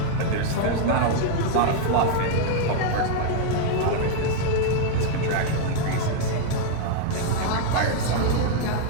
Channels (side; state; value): both; different; correlation 0.00